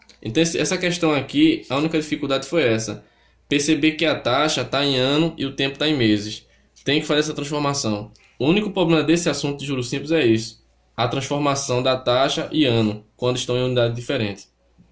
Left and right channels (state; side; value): identical; both; correlation 1.00